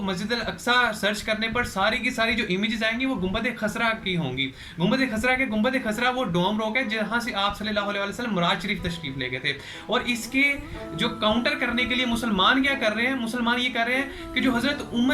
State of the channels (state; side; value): identical; both; correlation 1.00